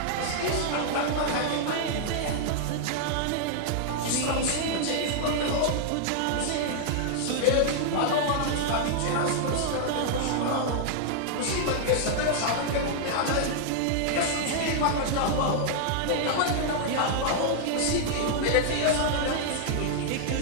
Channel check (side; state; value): both; different; correlation -0.01